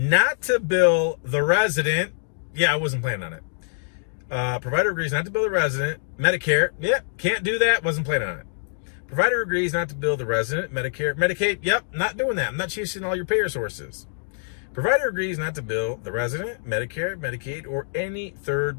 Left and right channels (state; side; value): silent; right; digital silence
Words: to bill the resident. Yeah, I wasn't planning on it. Provider agrees not to bill the resident. Medicare, yep, can't do that, wasn't planning on it. Provider agrees not to bill the resident. Medicare, Medicaid, yep, not doing that. I'm not chasing all your payer sources. Provider agrees not to bill the resident, Medicare, Medicaid, or any